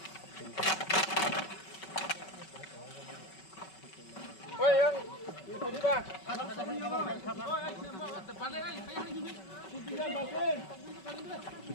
ওই ইয়ং দিবা পালে I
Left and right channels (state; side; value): late; right; 5.3 ms